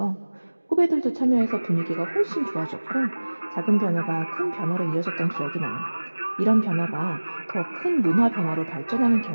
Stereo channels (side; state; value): both; inverted; correlation -1.00